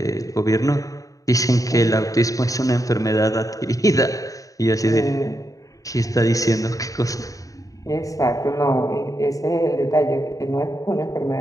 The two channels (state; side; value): late; right; 0.16 ms